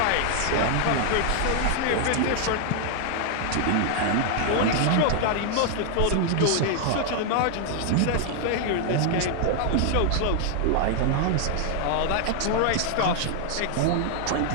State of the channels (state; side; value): different; both; correlation 0.00